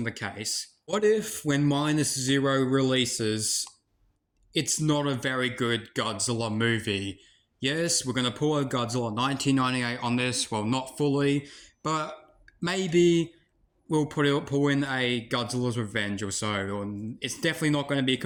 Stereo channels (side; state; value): both; identical; correlation 1.00